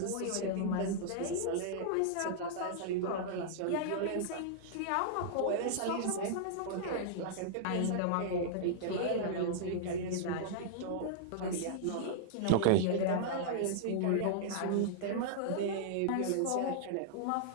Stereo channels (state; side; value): different; both; correlation -0.02